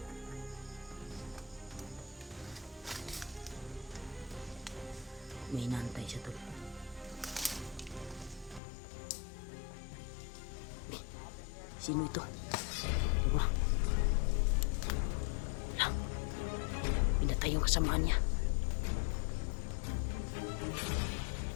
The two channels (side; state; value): right; drops out; at 8.6 s